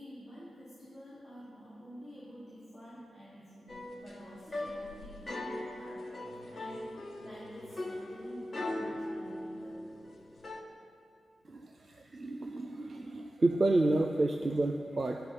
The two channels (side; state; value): both; normal; correlation 0.94